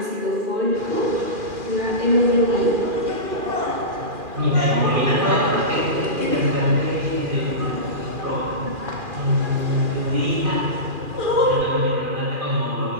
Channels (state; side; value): late; left; 2.4 ms